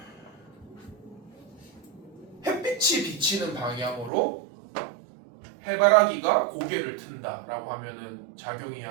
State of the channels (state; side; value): drops out; left; at 4.1 s